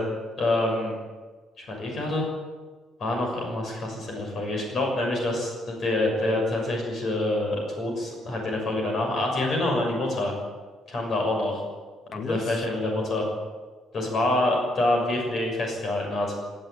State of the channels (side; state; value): both; normal; correlation 0.72